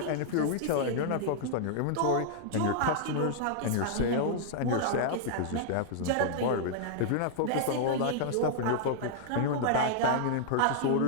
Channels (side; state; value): both; different; correlation -0.01